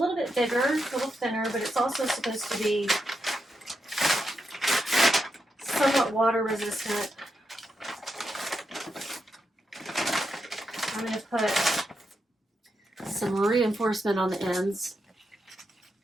bit bigger, a little thinner, but it's also supposed to be somewhat water resistant. I'm going to put some reinforcement on the ends.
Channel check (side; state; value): both; normal; correlation 0.85